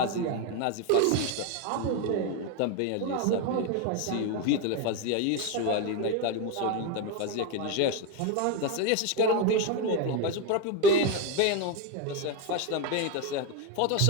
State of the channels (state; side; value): different; both; correlation 0.02